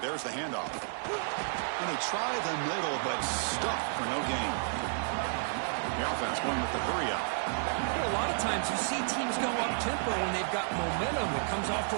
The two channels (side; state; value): left; silent; digital silence